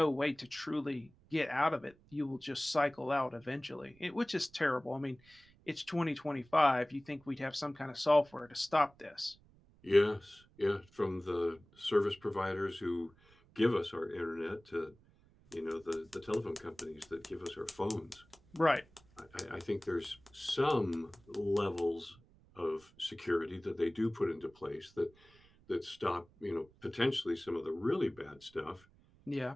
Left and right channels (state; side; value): noise; right; rumble, 28 dB below the sound